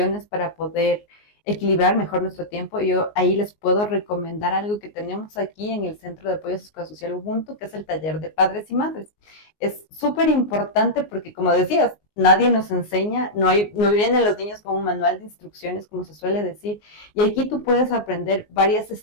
para poder equilibrar mejor nuestro tiempo. Yo ahí les puedo recomendar algo que tenemos aquí en el Centro de Apoyo Sociosocial Ubuntu, que es el taller de padres y madres. Es súper importante porque, como decías, nadie nos enseña, no vienen los niños con un manual de instrucciones, como se suele decir, y aquí tú puedes aprender varias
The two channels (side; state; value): right; late; 19 ms